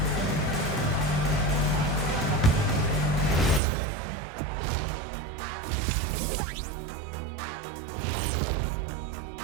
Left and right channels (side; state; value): left; drops out; at 3.6 s